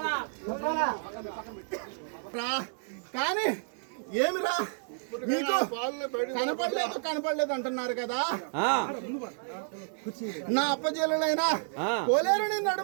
కానీ ఏమిరా మీకు కనపడలేదు అంటున్నారు కదా. నా అప్పజేలైనా కోలేరుని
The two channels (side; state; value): left; silent; 57 dB below the other